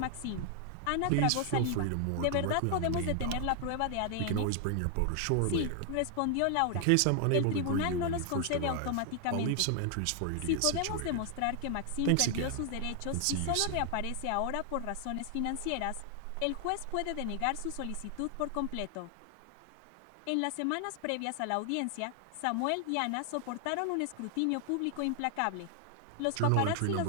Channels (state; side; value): different; both; correlation 0.00